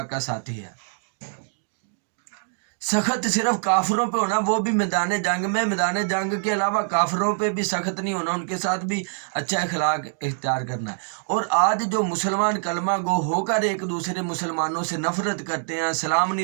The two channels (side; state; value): left; silent; digital silence